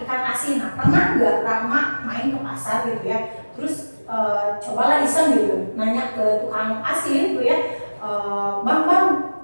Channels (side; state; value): both; inverted; correlation -1.00